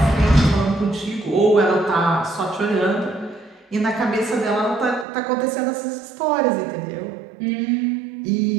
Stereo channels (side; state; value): left; drops out; at 5.1 s